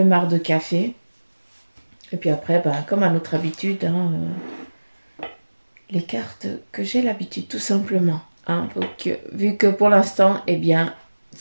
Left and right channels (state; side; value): inverted; both; correlation -1.00